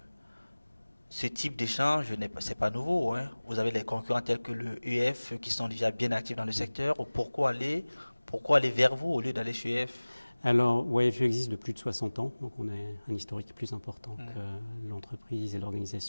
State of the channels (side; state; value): both; inverted; correlation -1.00